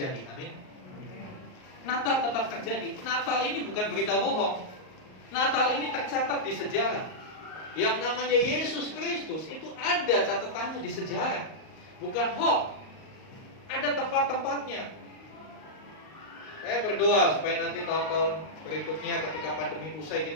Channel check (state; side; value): late; right; 38 ms